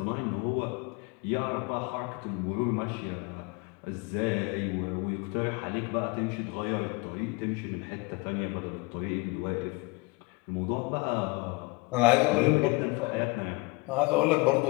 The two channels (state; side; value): quieter; right; 26.4 dB